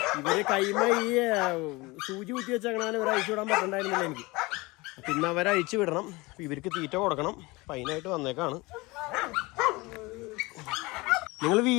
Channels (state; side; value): quieter; right; 23.2 dB